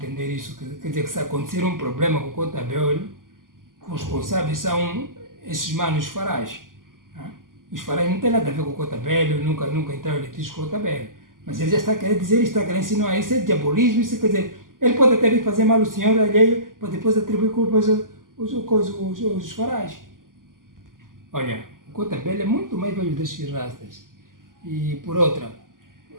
isso, quer dizer que se acontecer um problema com o Cotabelo, os responsáveis são esses manos farais. Os farais não têm nada a ver com o Cotabelo, nunca entraram em litígio com o Cotabelo. Mas ele já está querendo dizer, está querendo ensinar isso, é diabolismo, isso quer dizer, ele pode até vir fazer mal ao senhor alheio, para depois atribuir culpas aos farais. Olha, o Cotabelo é muito mais velho desses rastas. E por outra,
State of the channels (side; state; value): left; late; 0.90 ms